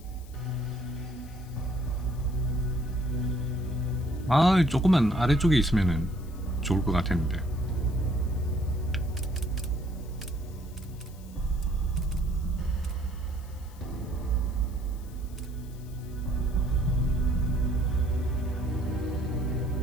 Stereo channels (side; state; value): left; noise; hiss, 24 dB below the sound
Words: 아, 조금만 아래쪽에 있으면은 좋을 것 같았는데.